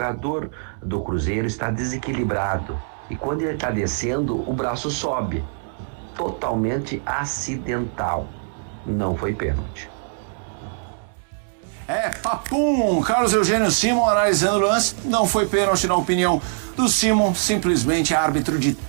do Cruzeiro está desequilibrado e quando ele está descendo, o braço sobe. Totalmente acidental. Não foi pênalti. Papum! Carlos Eugênio Simon analisando o lance. Não foi pênalti na opinião do Simon, simplesmente árbitro de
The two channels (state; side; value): silent; left; 64 dB below the other